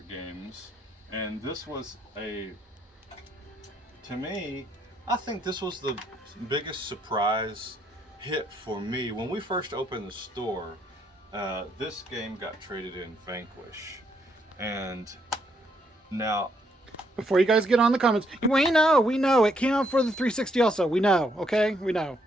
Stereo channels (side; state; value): both; normal; correlation 0.73